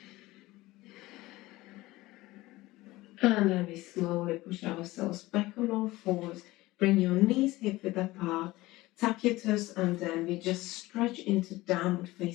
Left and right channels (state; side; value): quieter; right; 18.9 dB